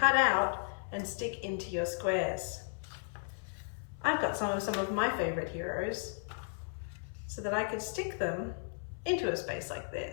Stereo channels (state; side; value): silent; right; 55 dB below the other